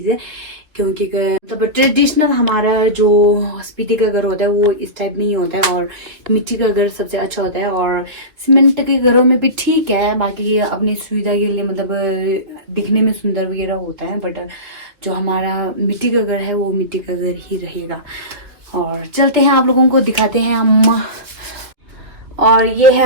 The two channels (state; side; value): late; left; 2.6 ms